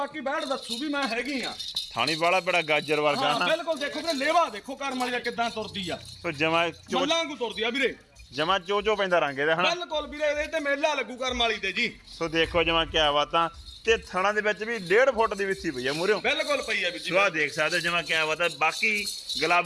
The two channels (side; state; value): both; identical; correlation 1.00